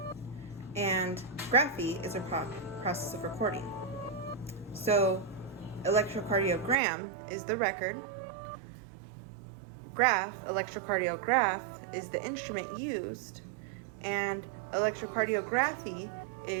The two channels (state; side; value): drops out; left; at 6.8 s